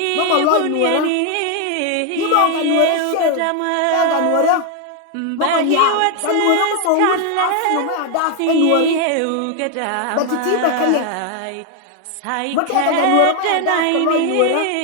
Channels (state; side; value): different; both; correlation 0.00